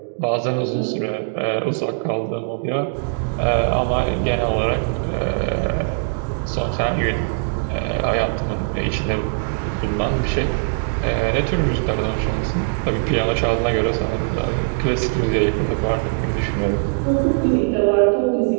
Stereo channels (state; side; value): silent; left; digital silence